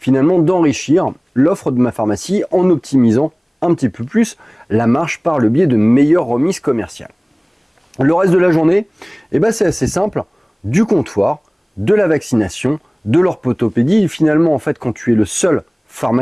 d'enrichir l'offre de ma pharmacie en optimisant un petit peu plus la marge par le biais de meilleures remises commerciales. Le reste de la journée, c'est assez simple, du comptoir, de la vaccination, de l'orthopédie. Finalement, en fait, quand tu es le seul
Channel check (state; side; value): identical; both; correlation 1.00